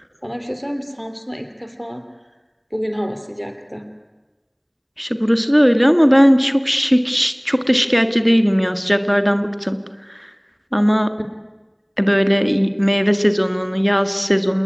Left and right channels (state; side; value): identical; both; correlation 1.00